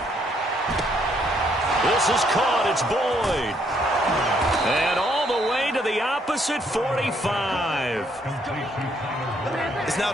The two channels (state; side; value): normal; both; correlation 0.70